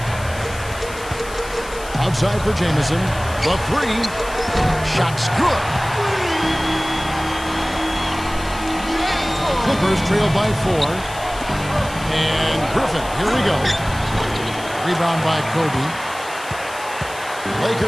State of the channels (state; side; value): noise; left; hiss, 16 dB below the sound